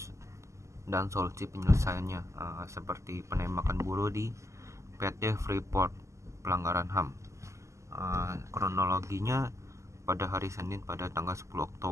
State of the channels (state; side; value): late; left; 0.14 ms